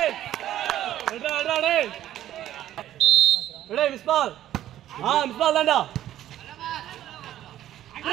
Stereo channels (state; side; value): quieter; left; 12.5 dB